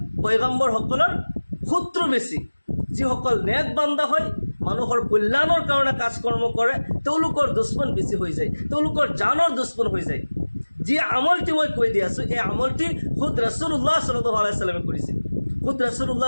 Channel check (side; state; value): both; inverted; correlation -1.00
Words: পয়গম্বৰসকলৰ শত্ৰু বেছি। যিসকল নেক বান্দা হয়, মানুহৰ কল্যাণৰ কাৰণে কাজ কৰ্ম কৰে, তেওঁলোকৰ দুশ্মন বেছি হৈ যায়, তেওঁলোকৰ জানৰ দুশ্মন হৈ যায়। যি আমলটি মই কৈ দি আছোঁ, এই আমলটি খুদ ৰাছুলুল্লাহ সাল্লাল্লাহু আলাইহি ওয়াসাল্লামে কৰিছিল। খুদ ৰাছুলুল্লাহ